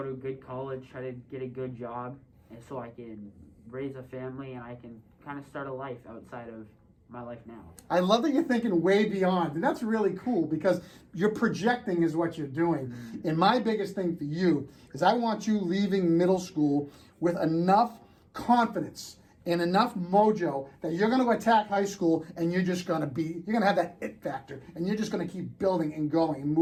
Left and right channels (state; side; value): identical; both; correlation 1.00